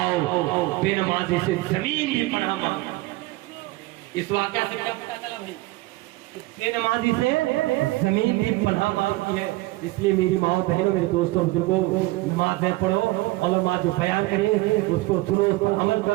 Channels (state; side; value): quieter; left; 19.8 dB